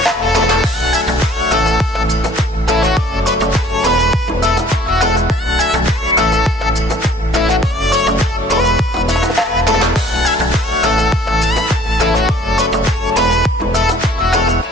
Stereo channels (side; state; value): both; normal; correlation 0.56